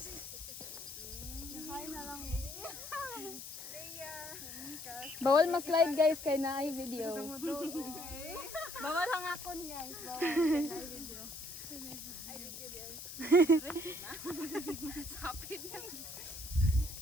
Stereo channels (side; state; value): left; noise; hiss, 10 dB below the sound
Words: Hi na lang. Bawal ma-slide, guys, kay na ay video. Bawal ang akon, guys. Bawal. Kaya video. Ay, video guys. Sapid na.